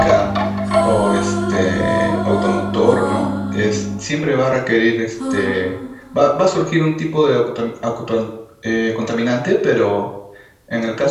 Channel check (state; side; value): identical; both; correlation 1.00